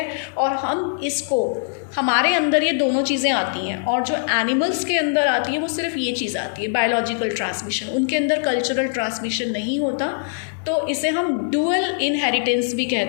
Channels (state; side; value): silent; right; digital silence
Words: और हम इसको, हमारे अंदर ये दोनों चीज़ें आती हैं, और जो एनिमल्स के अंदर आती है वो सिर्फ ये चीज़ आती है, बायोलॉजिकल ट्रांसमिशन, उनके अंदर कल्चरल ट्रांसमिशन नहीं होता। तो इसे हम डुअल इनहेरिटेंस भी